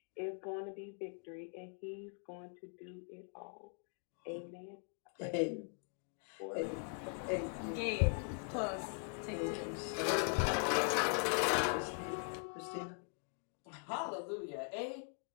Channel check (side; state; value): right; silent; 50 dB below the other